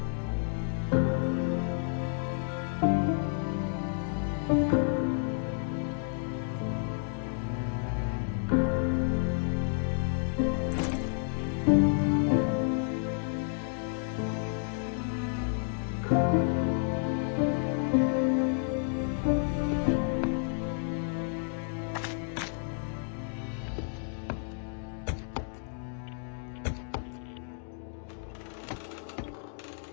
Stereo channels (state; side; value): silent; right; 57 dB below the other